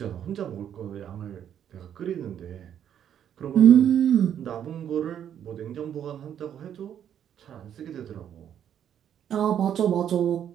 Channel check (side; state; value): left; quieter; 9.5 dB